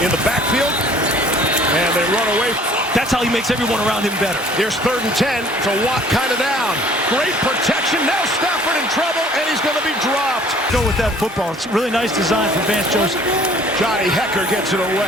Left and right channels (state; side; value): normal; both; correlation 0.54